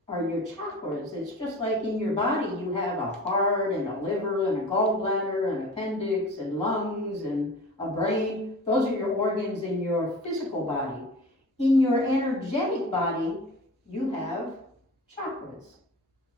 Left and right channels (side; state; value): both; normal; correlation 0.38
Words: are your chakras. It's just like in your body you have a heart and a liver and a gallbladder and appendix and lungs and a brain. Those are your organs in your physical body. In your energetic body, you have chakras.